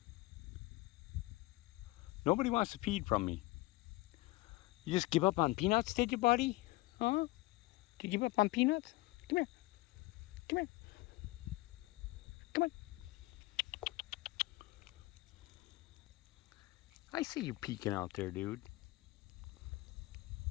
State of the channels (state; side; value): quieter; right; 20.8 dB